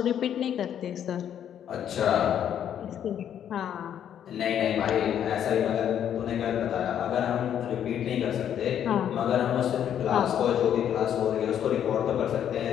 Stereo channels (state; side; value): quieter; right; 9.6 dB